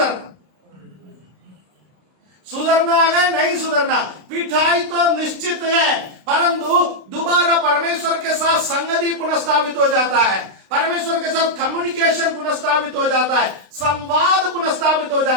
सुधरना है नहीं सुधरना। पिटाई तो निश्चित है, परंतु दोबारा परमेश्वर के साथ संगति पुनर्स्थापित हो जाता है, परमेश्वर के साथ कम्युनिकेशन पुनर्स्थापित हो जाता है, संवाद पुनर्स्थापित हो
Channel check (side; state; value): left; late; 32 ms